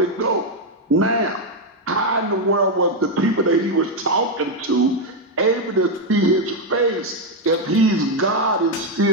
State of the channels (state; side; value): normal; both; correlation 0.03